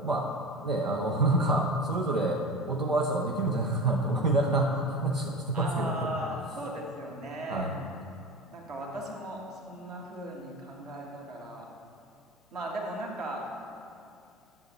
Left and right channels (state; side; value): normal; both; correlation 0.31